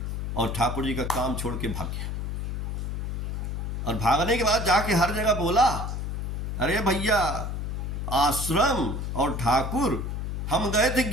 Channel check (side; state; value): left; noise; hum, 3 dB below the sound